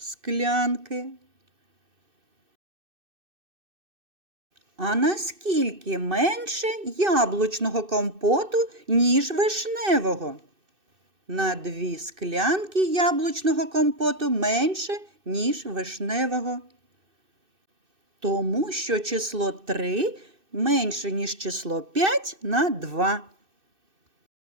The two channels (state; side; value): late; left; 2.6 ms